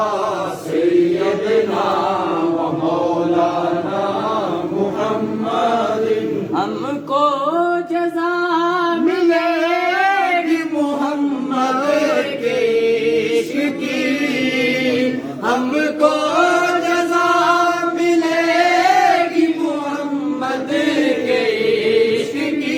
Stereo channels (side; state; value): both; identical; correlation 1.00